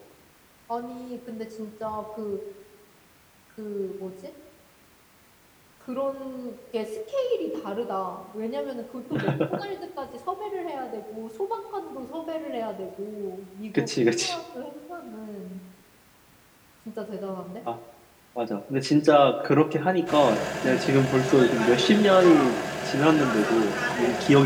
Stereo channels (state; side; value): identical; both; correlation 1.00